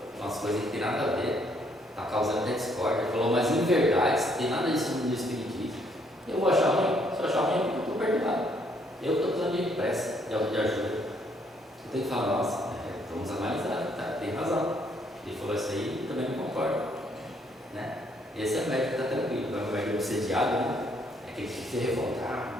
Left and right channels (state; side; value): normal; both; correlation 0.69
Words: umas coisas que não tem nada a ver, está causando até discórdia, falou umas inverdades, não tem nada disso no espiritismo. Eu vou achar ruim? Se eu achar ruim, é porque eu estou perdoado. Eu estou precisando de pressa, de ajuda. Eu tenho que falar, nossa, vamos analisar, tá? Tem razão. Ele falou isso aí, eu também não concordo. Né? Esse é o médico que está tranquilo. Agora o médico obsediado, né? É aquele que se